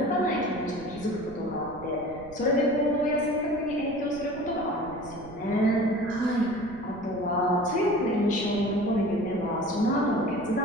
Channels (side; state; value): right; noise; rumble, 18 dB below the sound